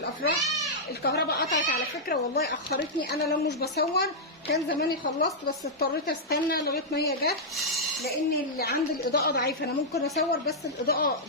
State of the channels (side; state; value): both; normal; correlation -0.08